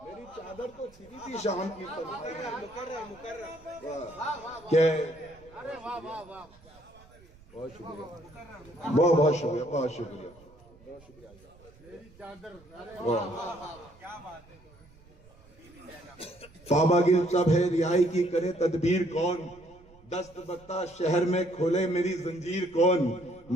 मेरी चादर तो छिनी थी शाम की तन्हाई में। बहुत शुक्रिया, बहुत शुक्रिया, बहुत शुक्रिया, बहुत शुक्रिया। पावागिल सब है, रिहाई की करे तदबीर कौन, दस्त बत्ता शहर में खोले मेरी जंजीर कौन।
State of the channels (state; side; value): noise; right; rumble, 25 dB below the sound